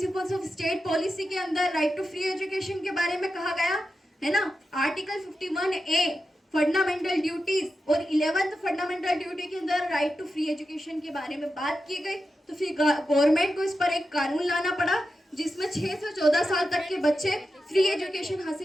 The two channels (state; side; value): normal; both; correlation 0.90